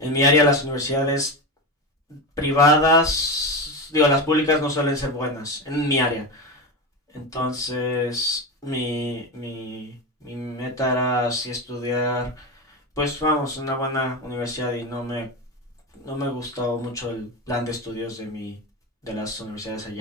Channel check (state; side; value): normal; both; correlation 0.19